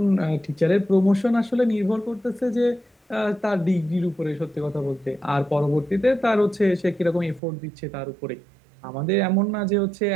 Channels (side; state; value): left; drops out; at 7.4 s